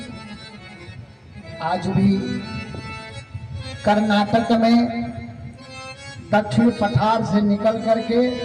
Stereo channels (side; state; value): both; identical; correlation 1.00